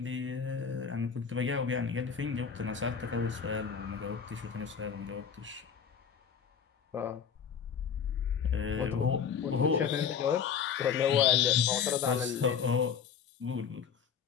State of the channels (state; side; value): quieter; right; 7.1 dB